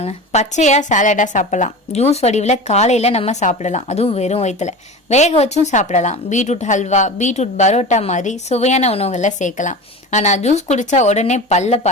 பச்சையா சாலடா சாப்பிடலாம். ஜூஸ் வடிவில் காலையில நம்ம சாப்பிடலாம், அதுவும் வெறும் வயிற்றுல. வேக வச்சும் சாப்பிடலாம். பீட்ரூட் ஹல்வா, பீட்ரூட் பரோட்டா மாதிரி சுவையான உணவுகள்ல சேர்க்கலாம். ஆனா ஜூஸ் குடிச்சா உடனே பல்ல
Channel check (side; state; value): both; normal; correlation 0.31